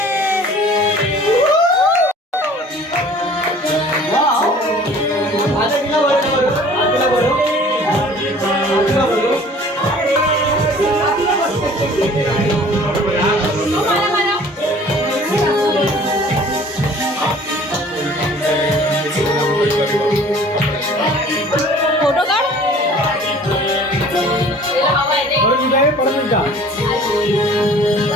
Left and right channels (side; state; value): both; normal; correlation 0.49